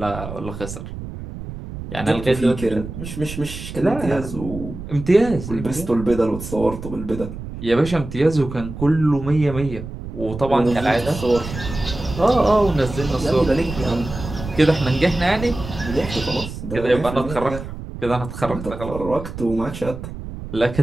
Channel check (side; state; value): right; noise; rumble, 10 dB below the sound